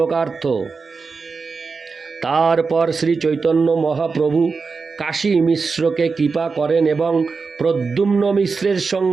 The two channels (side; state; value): left; quieter; 4.7 dB